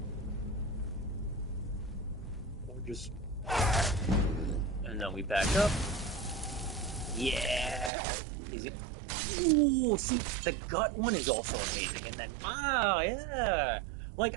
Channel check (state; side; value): drops out; left; at 7.9 s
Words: Or just... And then we back up. Yeah! Is it... Ooh, see, the gut one is also amazing. And then, wow, yeah!